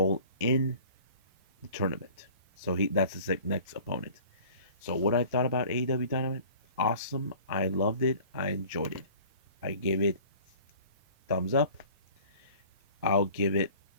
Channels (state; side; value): inverted; both; correlation -0.47